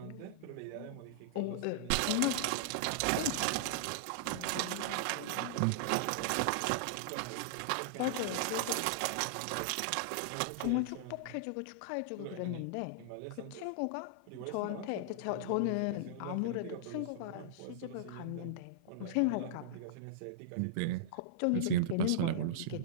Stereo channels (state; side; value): different; both; correlation -0.02